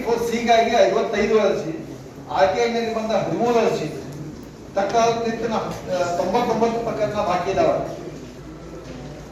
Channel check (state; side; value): identical; both; correlation 1.00